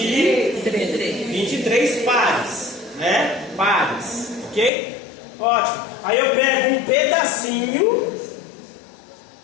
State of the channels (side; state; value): right; drops out; at 4.7 s